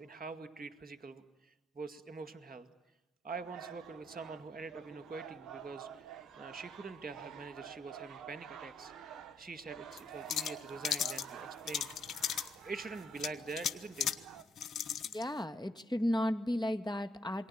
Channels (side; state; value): both; normal; correlation 0.73